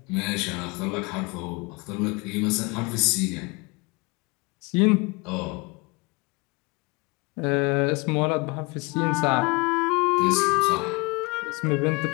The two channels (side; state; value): right; quieter; 27.1 dB